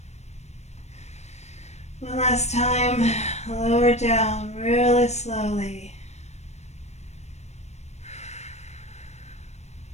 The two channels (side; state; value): right; late; 0.32 ms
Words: One last time, lower down really slowly.